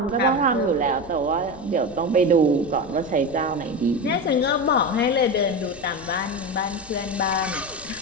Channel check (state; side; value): noise; left; rumble, 20 dB below the sound